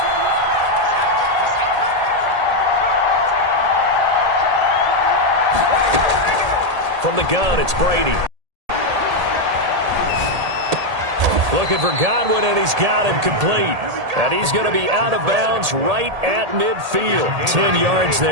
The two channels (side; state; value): left; late; 1.8 ms